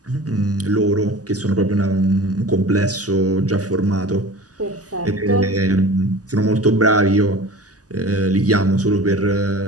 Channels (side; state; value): left; late; 0.67 ms